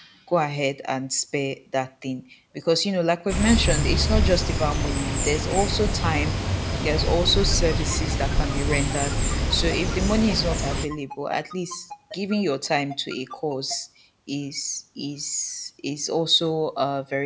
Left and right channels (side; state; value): both; identical; correlation 1.00